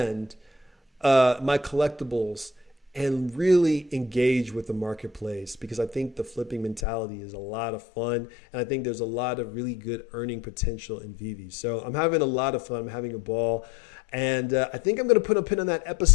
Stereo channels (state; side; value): drops out; right; at 6.9 s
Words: my collectibles and really engage with the marketplace, because I think the flipping mentality is a lot of fun. And I think there's a lot of really good earning potential in Veve. So I'm having a lot of fun. I'm having a ball. And I think I'm going to put a pin on that